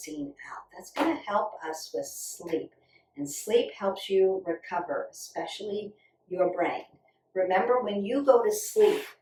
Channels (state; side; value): identical; both; correlation 1.00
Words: out? That's going to help us with sleep. And sleep helps you recover, especially your brain. Remember, when you go to sleep,